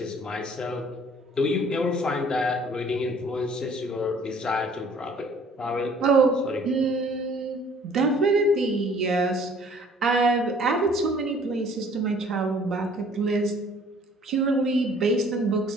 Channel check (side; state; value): both; normal; correlation 0.55